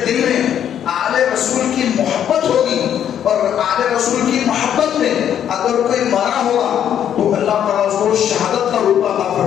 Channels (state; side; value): quieter; right; 9.7 dB